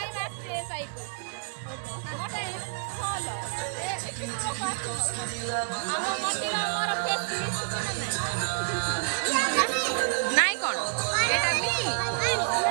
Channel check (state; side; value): silent; left; digital silence